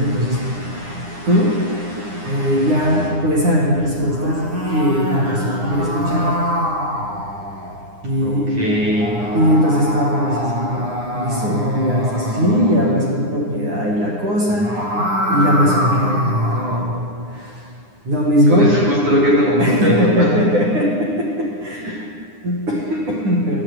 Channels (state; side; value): late; left; 9.8 ms